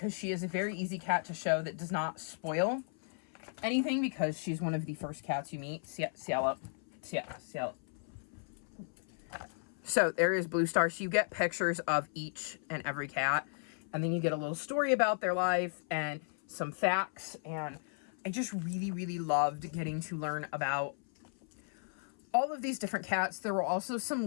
she is a very easy cat to show that does not spoil anything, because she's one of the first cats you meet. Cielo. So there is Blue Star. So you get pictures of each and every cat, and then you get a little story about their life and some facts. And I just really loved getting to learn about all of these different cats. There were also some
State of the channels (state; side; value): silent; right; 54 dB below the other